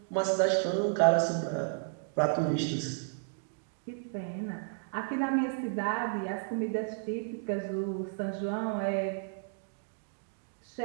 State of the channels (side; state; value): left; silent; digital silence